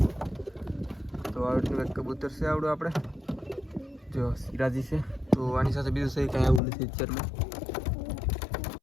તો આવી રીતનું એક કબૂતર છે આવડું આપણે, જો સિરાજી છે. તો આની સાથે બીજું સહી કાંઈ આવું નથી અત્યારમાં.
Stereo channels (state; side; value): drops out; right; at 6.6 s